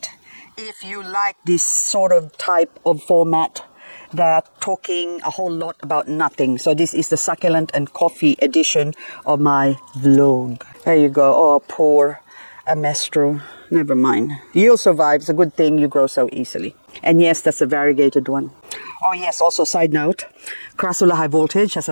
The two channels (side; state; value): both; inverted; correlation -1.00